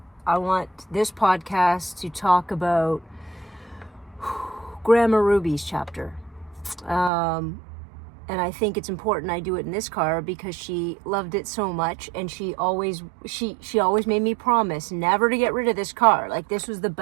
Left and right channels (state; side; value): drops out; left; at 7.1 s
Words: I want this podcast to talk about Grandma Ruby's chapter. And I think it's important I do it in this car because she loved it so much, and she always made me promise never to get rid of this car. Like, this was the